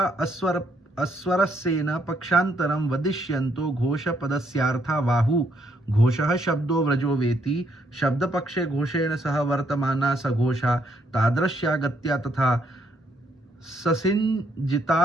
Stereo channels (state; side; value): normal; both; correlation 0.72